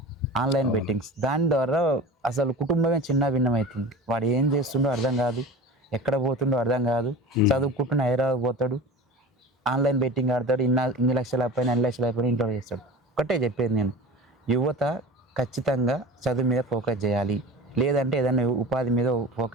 ఆన్లైన్ బెట్టింగ్స్, దాని ద్వారా అసలు కుటుంబమే చిన్న భిన్నమవుతుంది. వాడు ఏం చేస్తుండో అర్థం కాదు, ఎక్కడ పోతుండో అర్థం కాదు. చదువుకుంటున్న హైదరాబాద్ పోతాడు, ఆన్లైన్ బెట్టింగ్ ఆడతాడు, ఇన్ని లక్షలు అయిపోయినా 2 లక్షలు అయిపోయినా ఇంట్లో చేస్తాడు. ఒకటే చెప్పేది నేను, యువత ఖచ్చితంగా చదువు మీద ఫోకస్ చేయాలి, లేదంటే ఏదైనా ఉపాధి మీద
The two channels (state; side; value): normal; both; correlation 0.35